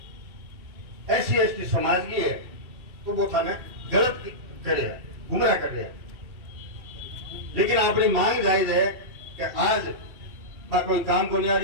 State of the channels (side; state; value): left; late; 2.6 ms